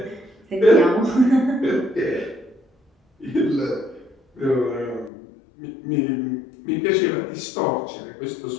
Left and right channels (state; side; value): drops out; right; at 5.1 s